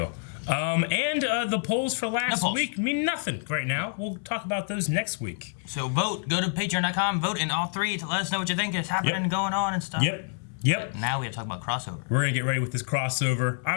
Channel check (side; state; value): right; silent; 60 dB below the other